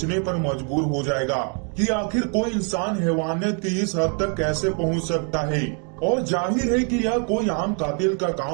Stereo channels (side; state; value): left; quieter; 39.7 dB